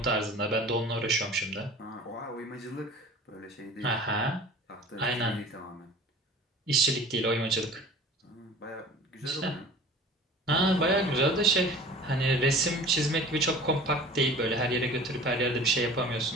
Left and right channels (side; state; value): both; normal; correlation 0.42